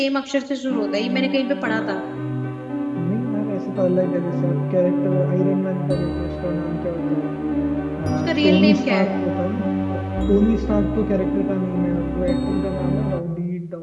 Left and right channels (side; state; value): both; identical; correlation 1.00